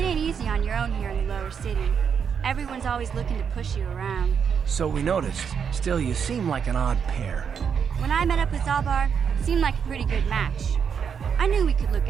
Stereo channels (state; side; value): quieter; left; 7.0 dB